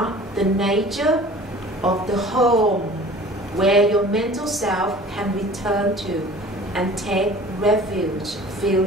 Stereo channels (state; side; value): normal; both; correlation 0.45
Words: the nature of the home where your mental self can return to and take refuge,